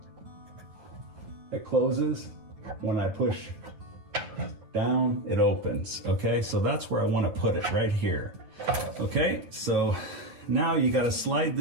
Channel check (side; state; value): left; late; 9.5 ms